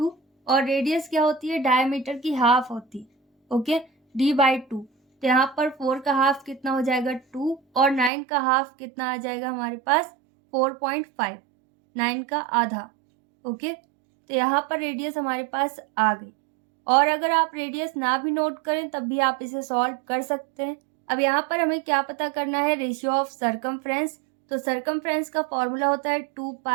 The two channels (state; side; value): drops out; left; at 8.1 s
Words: और रेडियस क्या होती है डायमीटर की हाफ होती है। ओके, d/2, तो यहाँ पर 4 का हाफ कितना हो जाएगा 2, और 9 का हाफ कितना आ जाएगा हमारे पास 4.5, 9 का आधा। ओके, तो यहाँ पर रेडियस हमारे पास आ गई। और अगर आप रेडियस ना भी नोट करें तब भी आप इसे सॉल्व कर सकते हैं। अब यहाँ पर हमें क्या पता करना है, रेशियो ऑफ सर्कमफ्रेंस। तो सर्कमफ्रेंस का फॉर्मूला होता है 2